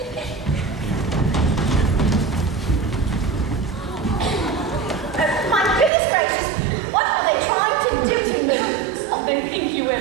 My goodness gracious, what are they trying to do to me? They think you wear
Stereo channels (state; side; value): drops out; left; at 5.9 s